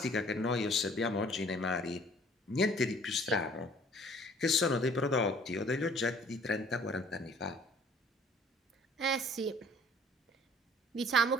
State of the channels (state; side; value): normal; both; correlation 0.54